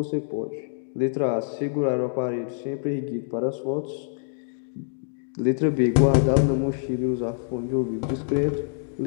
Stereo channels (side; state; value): right; silent; digital silence